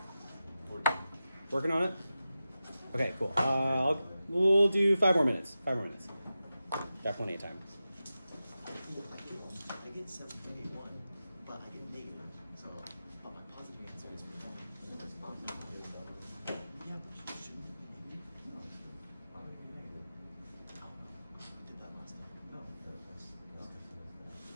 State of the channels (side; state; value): both; inverted; correlation -0.92